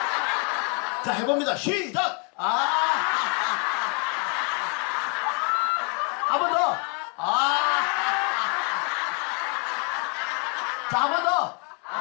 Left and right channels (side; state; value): right; quieter; 36.3 dB